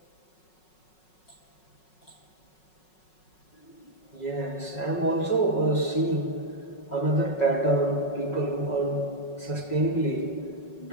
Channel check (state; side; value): late; right; 5.4 ms